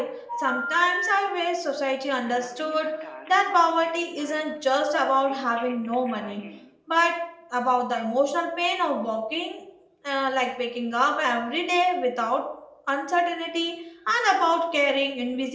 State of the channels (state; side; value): identical; both; correlation 1.00